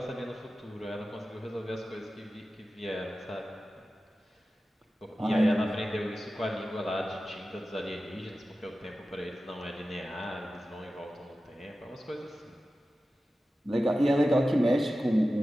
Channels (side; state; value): both; normal; correlation 0.94